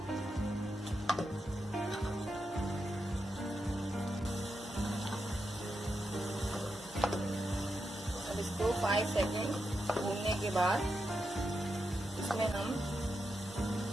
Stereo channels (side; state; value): both; normal; correlation 0.86